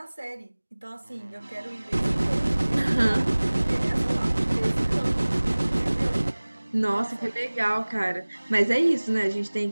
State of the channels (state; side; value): inverted; both; correlation -1.00